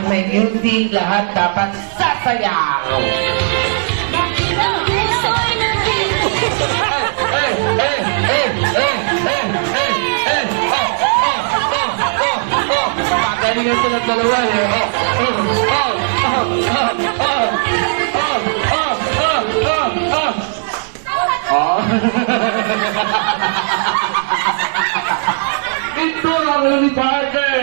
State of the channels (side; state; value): left; silent; digital silence